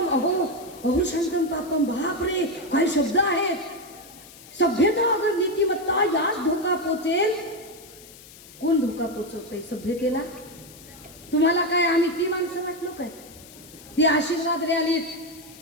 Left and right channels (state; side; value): noise; left; hiss, 20 dB below the sound